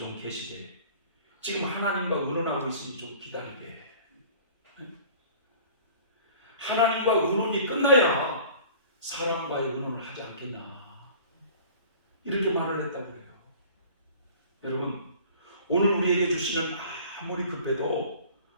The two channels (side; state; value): both; inverted; correlation -0.46